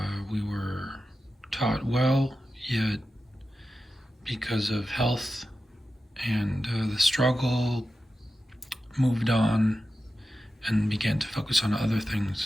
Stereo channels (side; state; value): both; normal; correlation 0.92